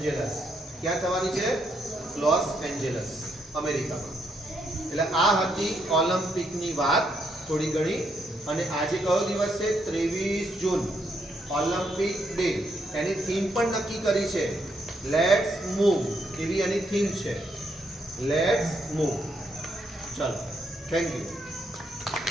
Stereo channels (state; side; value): normal; both; correlation 0.76